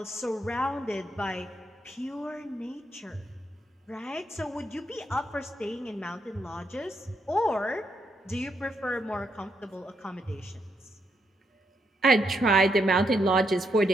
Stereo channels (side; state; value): both; normal; correlation 0.78